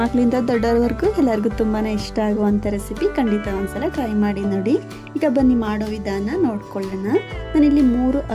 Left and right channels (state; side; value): identical; both; correlation 1.00